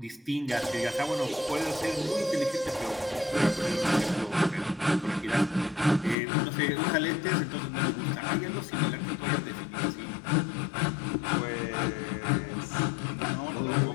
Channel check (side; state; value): right; drops out; at 6.2 s